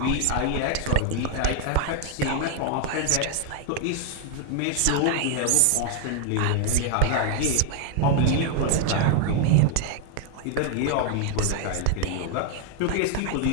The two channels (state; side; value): different; both; correlation 0.00